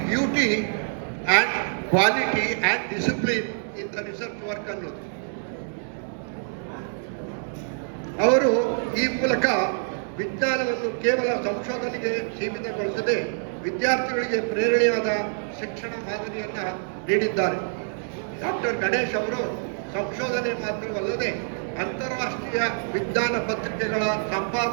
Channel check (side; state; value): left; silent; digital silence